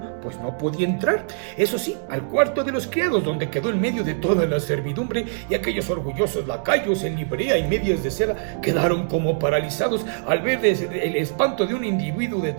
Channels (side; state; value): left; silent; digital silence